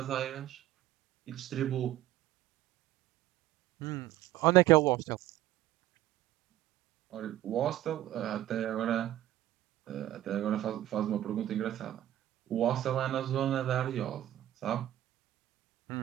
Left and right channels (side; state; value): left; quieter; 13.5 dB